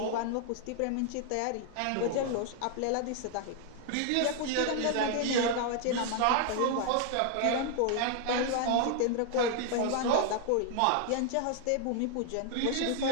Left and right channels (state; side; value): different; both; correlation 0.00